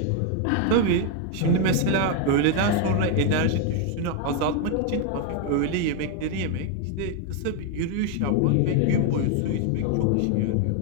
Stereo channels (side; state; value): both; different; correlation 0.01